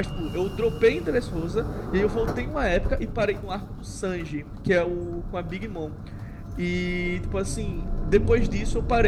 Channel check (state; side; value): identical; both; correlation 1.00